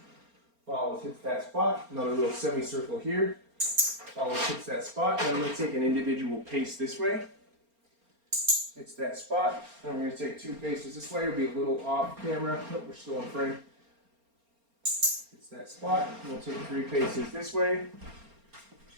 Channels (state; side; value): late; left; 4.3 ms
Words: Follows, hits that spot. Another little semicircle here. Follows, hits that spot. Then I'm going to take an individual pace this way. Hits that spot. Then we're going to take 2 paces this way. It'll be a little off camera. Nope, we're still in frame. Hits that spot. And we'll take 3 paces this way.